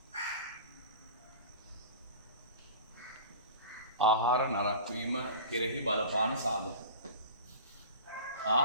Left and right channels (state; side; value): inverted; both; correlation -0.35